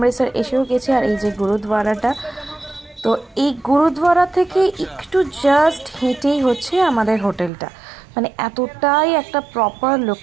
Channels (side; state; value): left; drops out; at 7.5 s